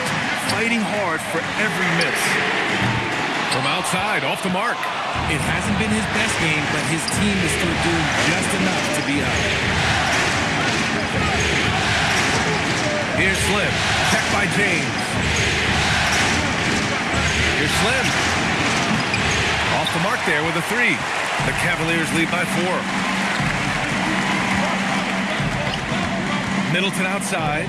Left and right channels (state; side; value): identical; both; correlation 1.00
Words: fighting hard for every miss. From outside, off the mark. It hasn't been his best game, but his team is still doing just enough to be up. Here's Slim. Check by James. Here's Slim. Off the mark there with a 3. The Cavaliers lead by 4. Middleton outside.